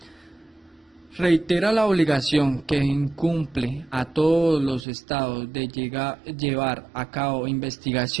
Reitera la obligación que incumbe a todos los estados de llevar a cabo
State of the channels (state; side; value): drops out; left; at 4.9 s